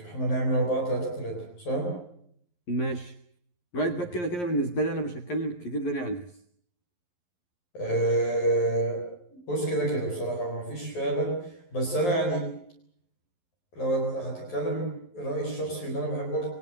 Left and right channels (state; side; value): late; right; 11 ms